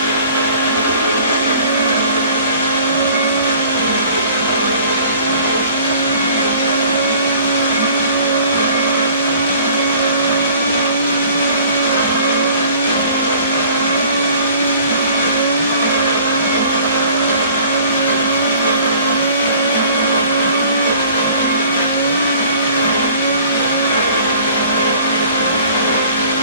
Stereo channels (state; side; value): inverted; both; correlation -0.51